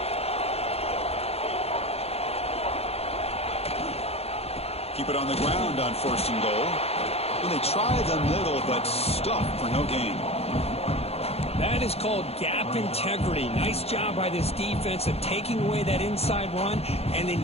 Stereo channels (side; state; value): right; late; 0.29 ms